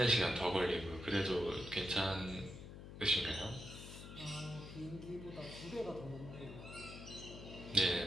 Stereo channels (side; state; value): left; noise; hum, 12 dB below the sound